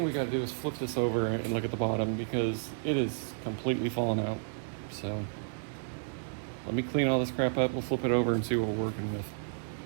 we got to do is flip this over and look at the bottom because it is completely fallen out. So let me clean all this crap up. We'll flip it over and see what we're working with.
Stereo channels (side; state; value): left; silent; digital silence